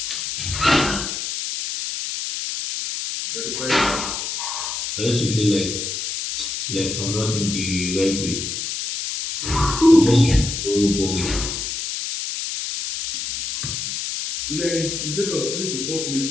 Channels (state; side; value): noise; left; hiss, 4 dB below the sound